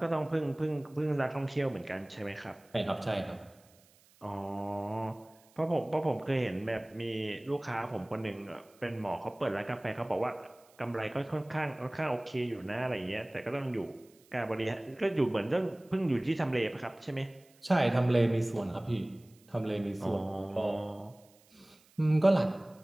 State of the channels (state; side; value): noise; right; hiss, 29 dB below the sound